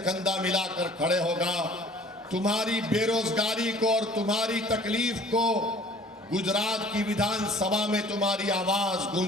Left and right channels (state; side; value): normal; both; correlation 0.51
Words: मिलाकर खड़े होगा। तुम्हारी बेरोजगारी को और तुम्हारी तकलीफ को गुजरात की विधानसभा में तुम्हारी आवाज